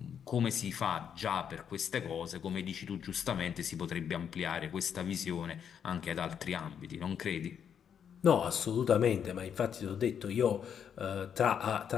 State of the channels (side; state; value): right; quieter; 8.0 dB